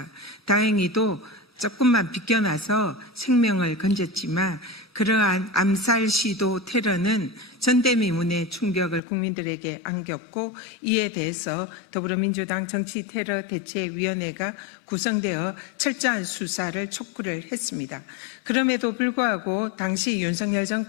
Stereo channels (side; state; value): right; drops out; at 9.0 s